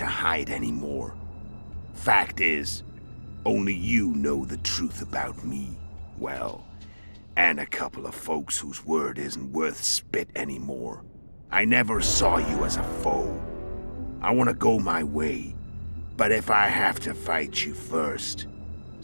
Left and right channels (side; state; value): both; inverted; correlation -1.00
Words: hide anymore. Fact is, only you know the truth about me. Well, and a couple of folks whose word isn't worth spit anymore. I never saw you as a foe. I want to go my way, but if I have to fight you first,